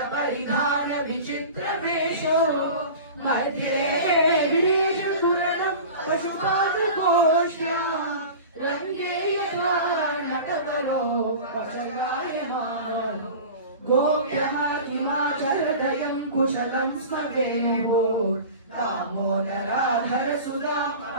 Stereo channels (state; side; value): inverted; both; correlation -0.36